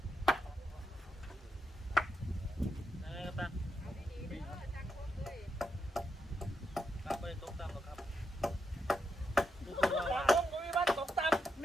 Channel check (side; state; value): both; normal; correlation 0.84